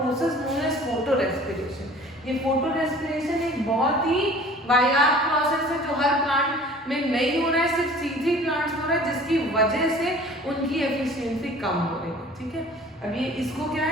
known as photorespiration। ये फोटोरेस्पिरेशन एक बहुत ही वाहियात process है जो हर plant में नहीं हो रहा है, सिर्फ C3 प्लांट्स हो रहा है, जिसकी वजह से उनकी एफिशिएंसी कम हो रही है। ठीक है, अब ये इसको क्या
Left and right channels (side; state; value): both; normal; correlation 0.47